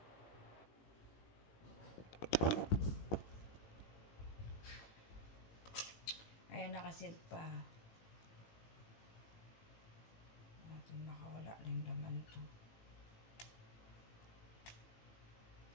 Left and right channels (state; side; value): late; right; 18 ms